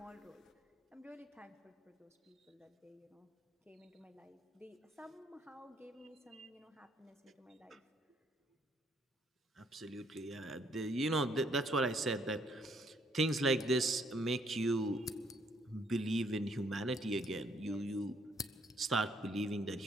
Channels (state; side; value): normal; both; correlation 0.68